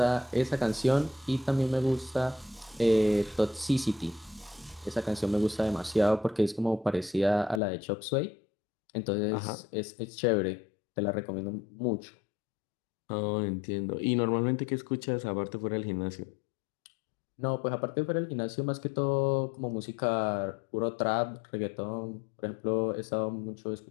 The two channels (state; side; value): drops out; right; at 7.6 s